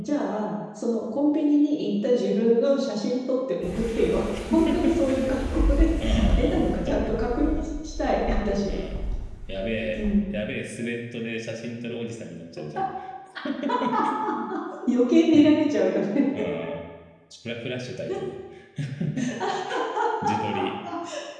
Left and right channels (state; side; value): identical; both; correlation 1.00